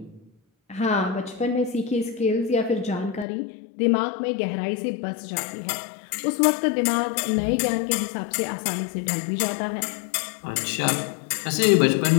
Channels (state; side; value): drops out; right; at 3.2 s